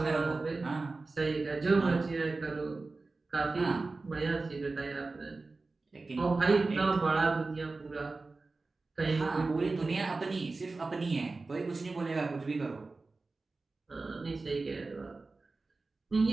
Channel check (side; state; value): left; quieter; 3.6 dB